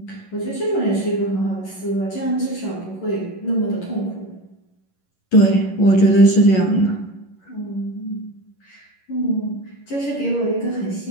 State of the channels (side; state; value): right; late; 11 ms